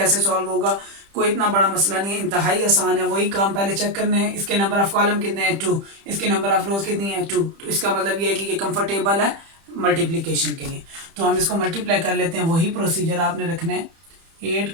सॉल्व होगा। कोई इतना बड़ा मसला नहीं है, इंतहाई आसान है। वही काम पहले चेक करने हैं, इसके नंबर ऑफ कॉलम कितने हैं 2, इसके नंबर ऑफ रोज कितनी है 2, तो इसका मतलब ये है कि ये कंफर्टेबल है मल्टीप्लिकेशन के लिए। तो हम इसको मल्टीप्लाई कर लेते हैं, वही प्रोसीजर आपने रखना है। 8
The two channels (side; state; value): left; late; 30 ms